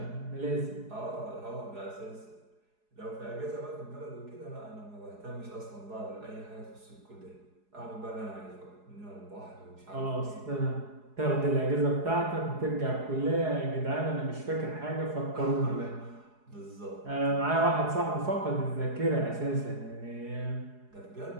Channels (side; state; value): left; late; 4.8 ms